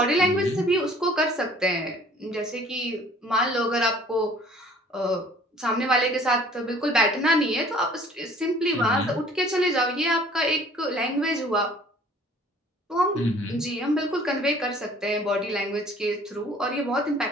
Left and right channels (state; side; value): normal; both; correlation 0.54